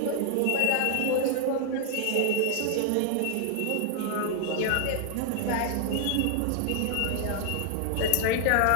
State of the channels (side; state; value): both; different; correlation 0.00